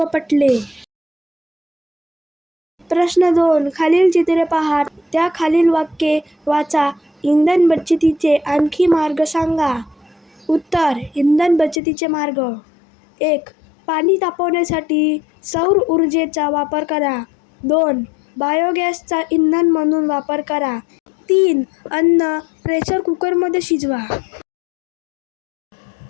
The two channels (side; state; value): right; drops out; at 11.8 s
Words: पटले. प्रश्न 2. खालील चित्रे पहा, त्या खालील वाक्ये वाचा. इंधन बचतीचे आणखी मार्ग सांगा. उत्तर. इंधन बचतीचे मार्ग. 1. पाणी तापवण्यासाठी सौर ऊर्जेचा वापर करा. 2. बायोगॅसचा इंधन म्हणून वापर करा. 3. अन्न प्रेशर कुकरमध्ये शिजवा.